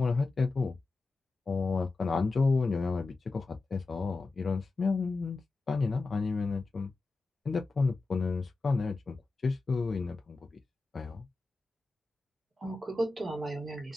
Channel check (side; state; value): right; quieter; 3.6 dB